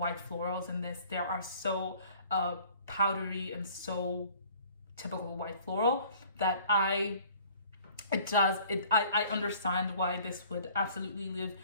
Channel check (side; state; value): both; inverted; correlation -0.53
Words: florals in this. They are so powdery and so typical white floral that I understand why this would absolutely leave